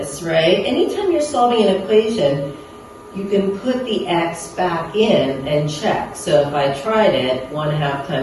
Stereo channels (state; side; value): identical; both; correlation 1.00